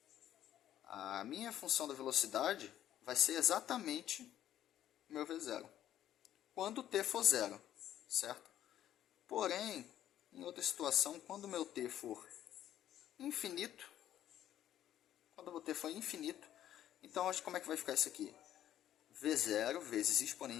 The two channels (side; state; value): right; quieter; 11.7 dB